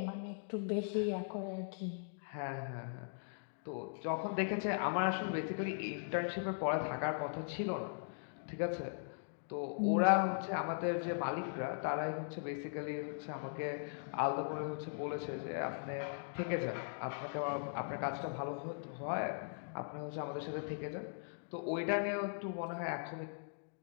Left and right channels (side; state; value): right; silent; digital silence